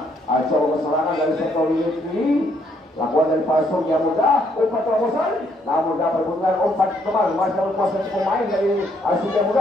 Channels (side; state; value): both; normal; correlation 0.70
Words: coba serangan dari sektor ini. Lakukan dari Pasung yang mudah, umpan terobosan, namun dapat bunga umpan kembali masih kuasa pemain dari Surya